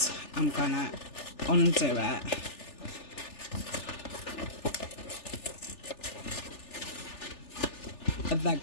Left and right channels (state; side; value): late; right; 3.4 ms